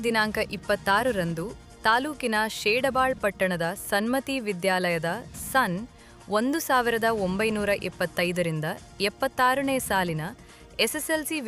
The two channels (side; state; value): both; identical; correlation 1.00